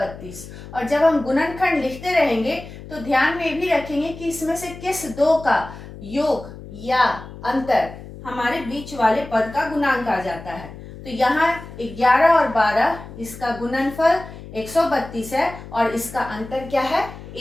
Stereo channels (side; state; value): left; noise; hum, 14 dB below the sound